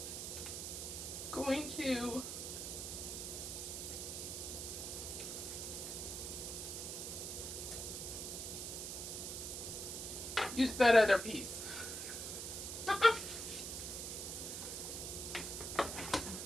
going to use that other piece.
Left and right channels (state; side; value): noise; right; hiss, 5 dB below the sound